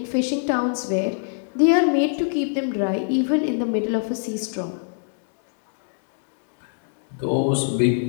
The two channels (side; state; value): right; silent; digital silence